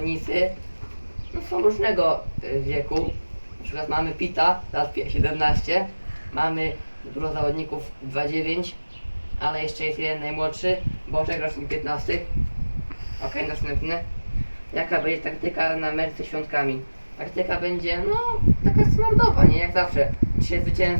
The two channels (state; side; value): inverted; both; correlation -1.00